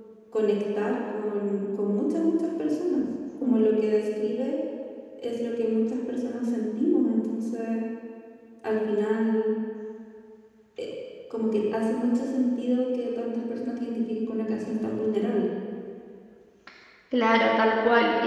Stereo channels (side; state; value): both; identical; correlation 1.00